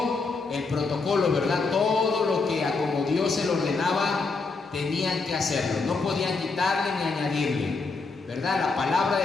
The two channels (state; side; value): quieter; right; 4.1 dB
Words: el protocolo, ¿verdad?, todo lo que a como Dios se lo ordenaba, tenían que hacerlo. No podían quitarle ni añadirle, ¿verdad? La palabra